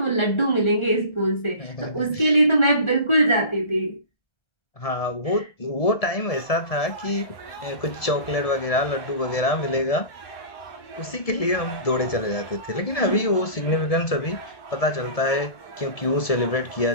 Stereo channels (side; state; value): right; late; 1.7 ms